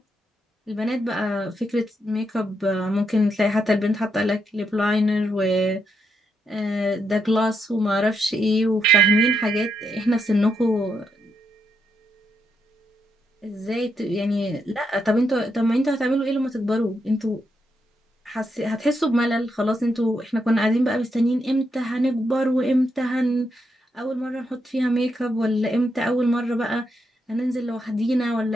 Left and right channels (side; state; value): both; normal; correlation 0.81